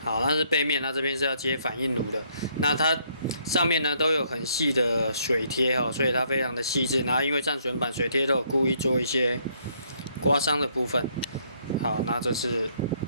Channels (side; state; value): both; inverted; correlation -0.68